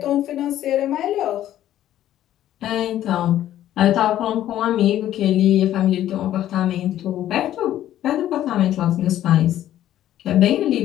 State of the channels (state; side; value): quieter; right; 12.4 dB